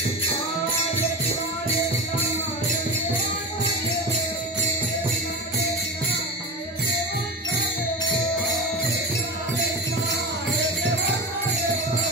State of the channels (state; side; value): normal; both; correlation 0.25